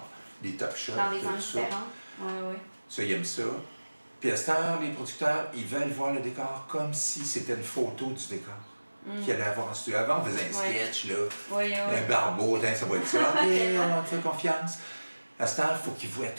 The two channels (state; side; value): inverted; both; correlation -1.00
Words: des top shots, dans des angles différents. Ça, ils aiment ça. Puis à cette heure, les producteurs, ils veulent voir le décor comme si c'était une photo du décor. Qu'il allait avoir en studio. Avant, on faisait un sketch, là, un barbeau, ça va être ça. OK, on te fait confiance. À cette heure, il faut qu'ils voient